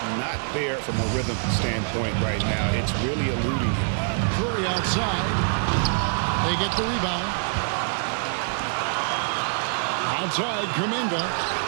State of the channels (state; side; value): silent; left; digital silence